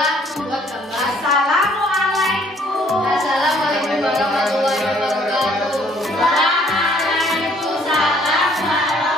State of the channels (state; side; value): normal; both; correlation 0.62